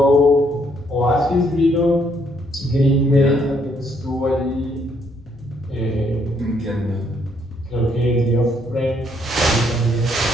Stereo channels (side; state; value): both; normal; correlation 0.70